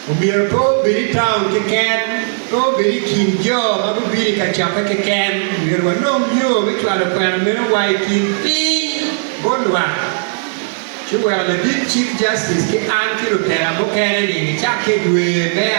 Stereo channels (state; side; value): silent; left; 61 dB below the other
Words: o biru to biri town ke ken to biri kinjo ma biri ka chapa ke ken biru no yo we kla pen mero wai kin pi bonwa chuwa the big chief justice ke an ki rutera mo kene ni cha ke dwe me